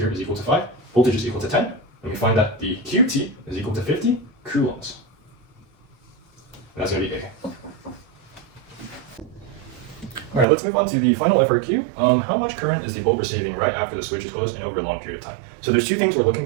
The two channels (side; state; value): left; drops out; at 10.5 s